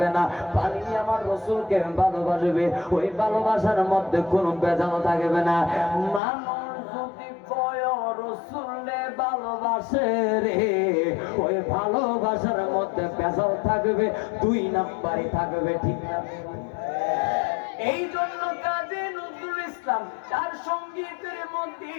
না। পানি আমার রসুলকে ভালোবাসবে, ওই ভালোবাসার মধ্যে কোনো ভেজাল থাকবে না। মানুষ যদি কয় রসুলে ভালোবাসে রে, ওই ভালোবাসার মধ্যে ভেজাল থাকবে, দুই নাম্বারই থাকবে, ঠিক না? এই জন্য কাজী নজরুল ইসলাম তার সঙ্গীতের মধ্যে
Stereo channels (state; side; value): drops out; right; at 6.2 s